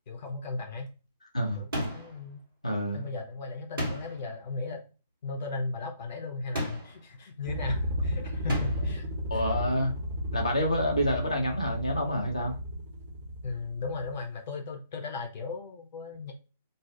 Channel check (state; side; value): inverted; both; correlation -0.68